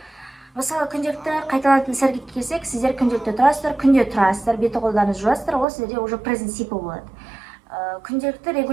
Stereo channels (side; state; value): left; drops out; at 5.7 s